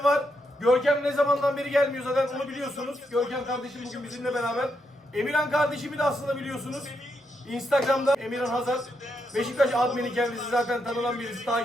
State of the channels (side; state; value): both; normal; correlation 0.81